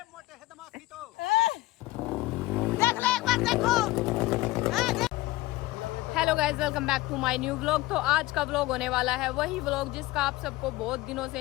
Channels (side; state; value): right; quieter; 18.5 dB